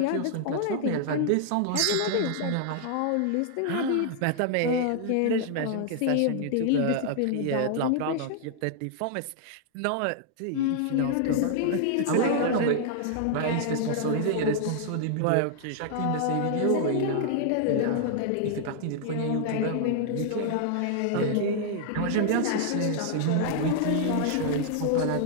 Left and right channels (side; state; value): both; different; correlation -0.01